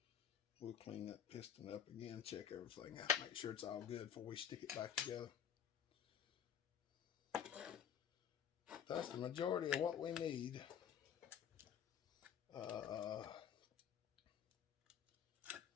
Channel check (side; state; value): right; quieter; 8.9 dB